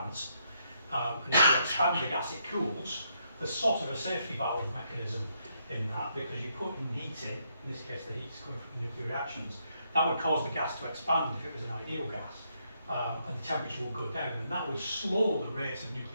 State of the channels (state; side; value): inverted; both; correlation -0.76